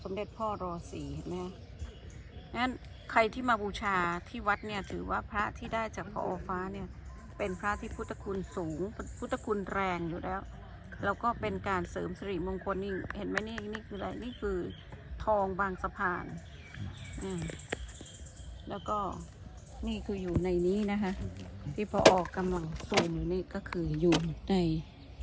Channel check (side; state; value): both; identical; correlation 1.00